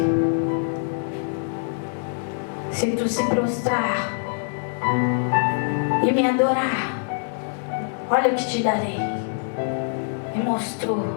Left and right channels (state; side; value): silent; right; digital silence